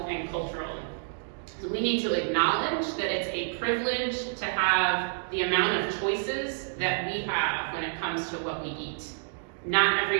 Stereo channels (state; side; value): silent; left; digital silence